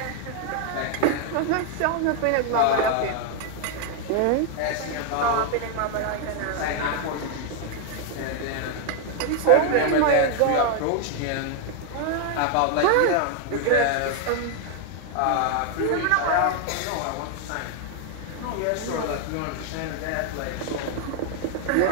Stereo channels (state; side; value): different; both; correlation 0.01